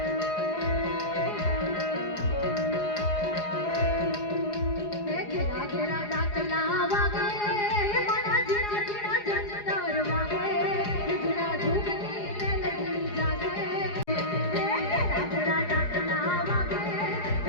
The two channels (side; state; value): right; late; 4.8 ms